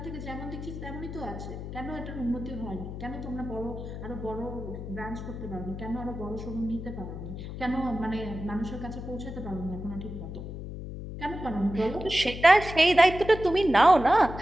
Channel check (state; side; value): noise; left; hum, 8 dB below the sound